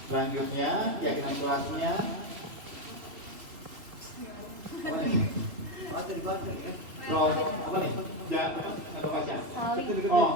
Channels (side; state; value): left; late; 3.5 ms